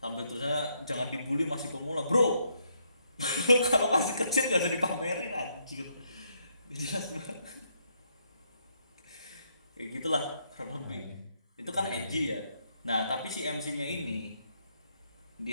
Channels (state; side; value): inverted; both; correlation -0.75